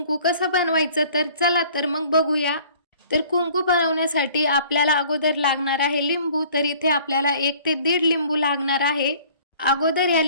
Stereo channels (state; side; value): inverted; both; correlation -0.53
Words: कसं बनवायचं, तर चला तर मग बघूया। तर कुंकू बनवण्यासाठी आपल्याला अगोदर लागणार आहे लिंबू। तर इथे आपल्याला 1 ते 1.5 लिंबू लागणार आहे। अगोदर या